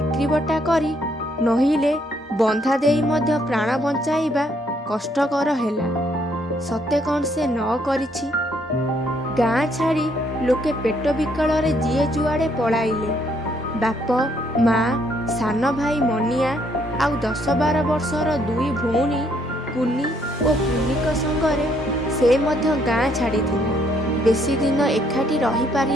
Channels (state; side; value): normal; both; correlation 0.69